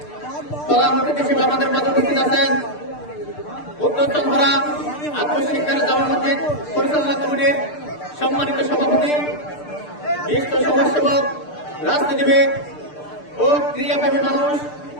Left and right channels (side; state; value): right; late; 6.7 ms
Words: প্রধান অতিথি হিসেবে আমাদের মাঝে উপস্থিত আছেন উত্তর চন্দ্রা আত্মশিক্ষার জামা মসজিদ পরিচালনা কমিটির সম্মানিত সভাপতি, বিশিষ্ট সমাজসেবক, রাজনীতিবিদ ও ক্রীড়াপ্রেমী মানুষ